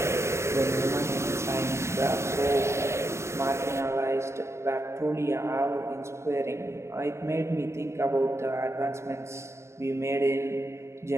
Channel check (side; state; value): left; late; 0.13 ms